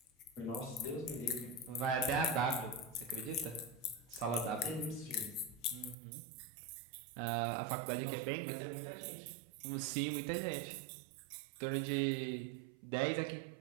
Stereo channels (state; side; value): drops out; left; at 6.0 s